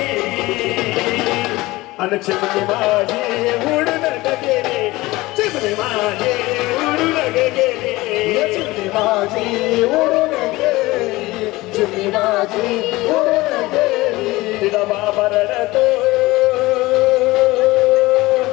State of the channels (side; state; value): right; quieter; 19.9 dB